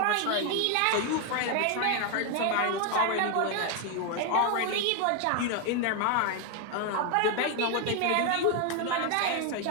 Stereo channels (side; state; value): both; different; correlation 0.01